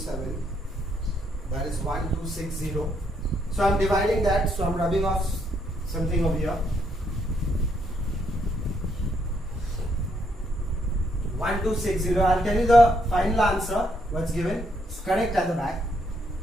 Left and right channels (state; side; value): normal; both; correlation 0.74